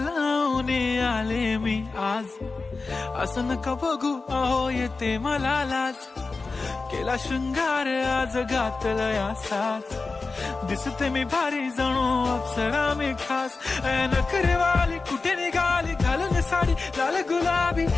आले मी आज, असं नका बघू अहो येते मला लाज. केला शृंगार आज घातला साज, दिसते मी भारी जणू अप्सरा मी खास. नखरेवाली कुठे निघाली घालून साडी लाल गुलाबी,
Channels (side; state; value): right; quieter; 4.0 dB